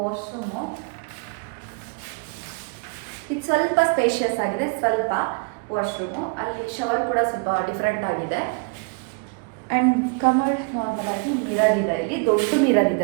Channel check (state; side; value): quieter; left; 34.3 dB